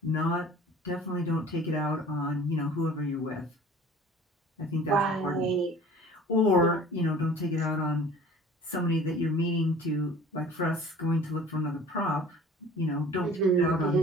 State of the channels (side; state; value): both; normal; correlation 0.46